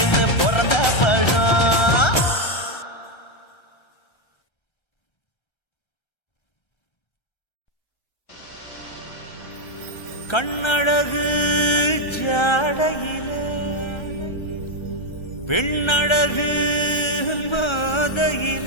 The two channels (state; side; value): late; right; 1.3 ms